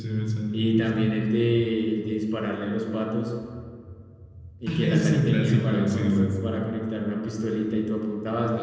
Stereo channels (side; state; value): both; identical; correlation 1.00